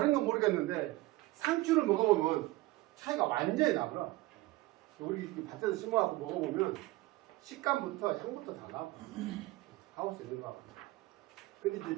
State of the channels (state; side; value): quieter; left; 19.1 dB